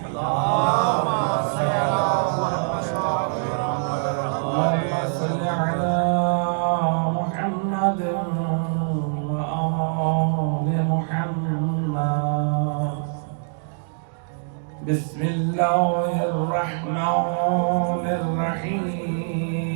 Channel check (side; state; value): left; silent; digital silence